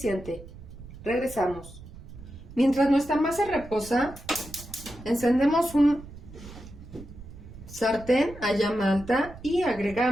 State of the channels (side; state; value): right; noise; rumble, 16 dB below the sound